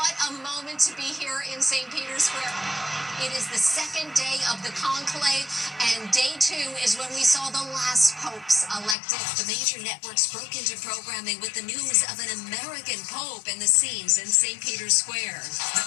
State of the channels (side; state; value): right; drops out; at 9.0 s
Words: a moment to be here in St. Peter's Square. It is the second day of the conclave, and day 2 is when we saw the last popes elected. The major networks broke into programming with the news of an American Pope and the scenes in St. Peter's Square.